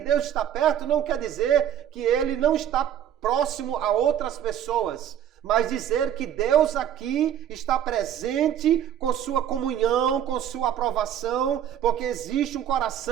está perto não quer dizer que Ele não está próximo a outras pessoas, mas dizer que Deus aqui está presente com sua comunhão, com sua aprovação, porque existe um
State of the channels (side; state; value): left; quieter; 10.2 dB